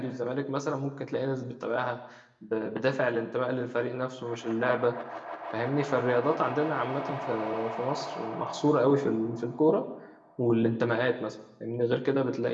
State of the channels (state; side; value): identical; both; correlation 1.00